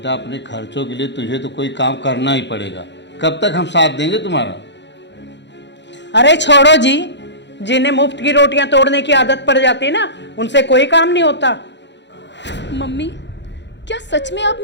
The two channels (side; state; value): right; late; 0.52 ms